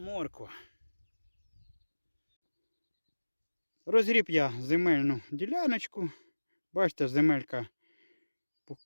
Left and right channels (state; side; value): inverted; both; correlation -1.00